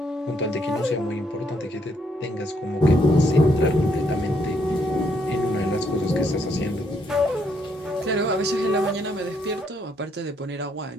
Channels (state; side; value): normal; both; correlation 0.72